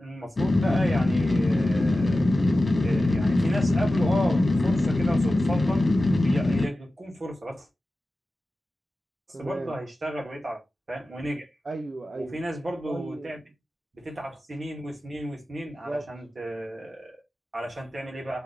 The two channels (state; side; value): normal; both; correlation 0.94